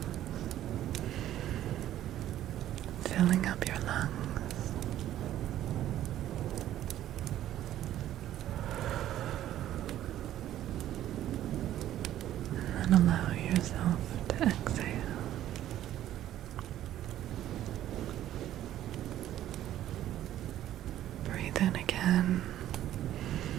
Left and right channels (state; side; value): quieter; left; 12.5 dB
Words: filling up your lungs, and then allow yourself to exhale. Breathe in again